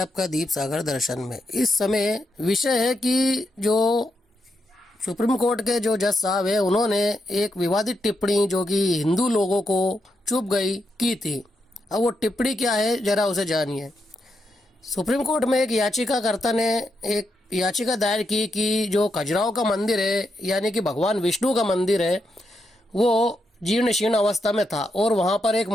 दीप सागर दर्शन में। इस समय विषय है कि जो सुप्रीम कोर्ट के जो जज साहब है, उन्होंने एक विवादित टिप्पणी जो कि हिंदू लोगों को चुभ गई की थी। अब वो टिप्पणी क्या है, जरा उसे जानिए। सुप्रीम कोर्ट में एक याचिकाकर्ता ने एक याचिका दायर की कि जो खजुराहो का मंदिर है, यानी कि भगवान विष्णु का मंदिर है, वो जीर्ण शीर्ण अवस्था में था और वहाँ पर एक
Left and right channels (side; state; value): both; normal; correlation 0.83